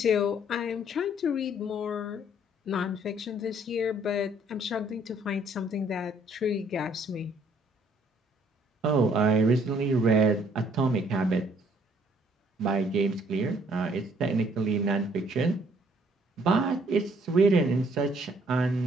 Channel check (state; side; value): normal; both; correlation 0.63